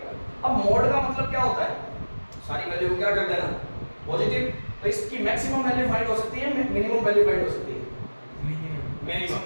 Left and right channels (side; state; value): both; inverted; correlation -1.00